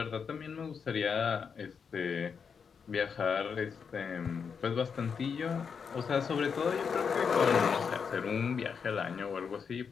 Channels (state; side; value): quieter; right; 6.3 dB